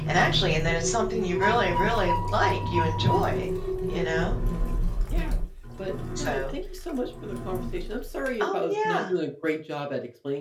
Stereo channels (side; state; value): both; identical; correlation 1.00